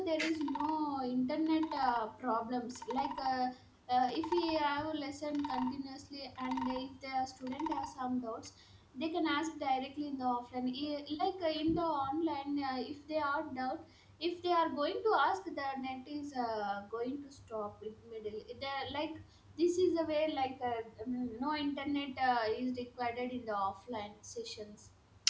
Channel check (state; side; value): identical; both; correlation 1.00